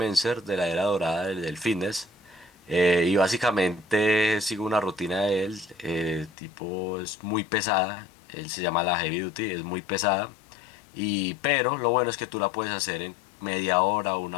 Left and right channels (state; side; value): drops out; right; at 6.3 s